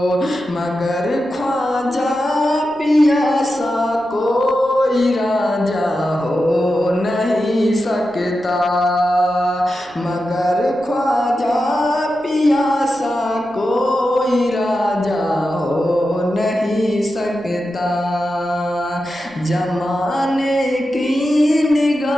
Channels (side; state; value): right; noise; rumble, 29 dB below the sound